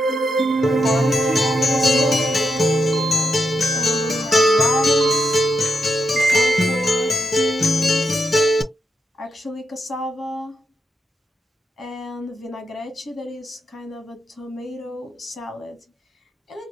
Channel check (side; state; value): both; normal; correlation 0.84